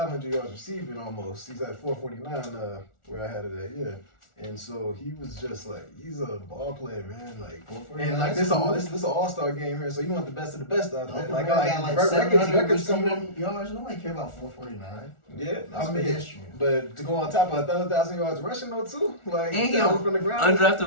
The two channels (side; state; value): right; late; 1.4 ms